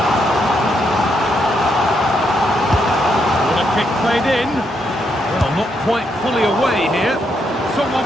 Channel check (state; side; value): normal; both; correlation 0.78